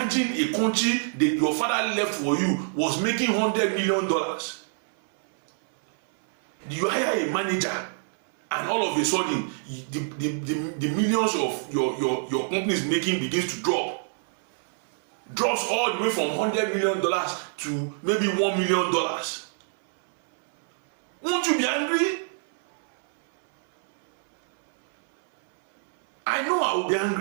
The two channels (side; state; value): left; silent; 60 dB below the other